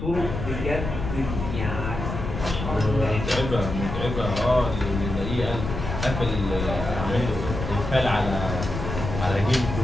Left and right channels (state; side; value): noise; left; rumble, 5 dB below the sound